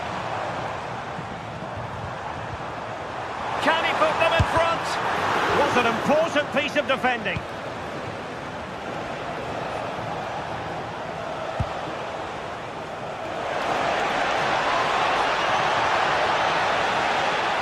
Can he put them in front? What an important piece of defending.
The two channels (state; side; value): identical; both; correlation 1.00